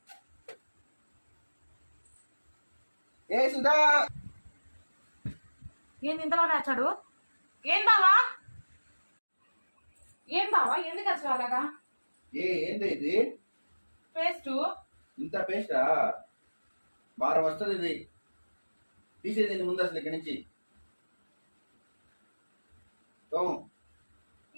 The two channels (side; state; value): both; inverted; correlation -1.00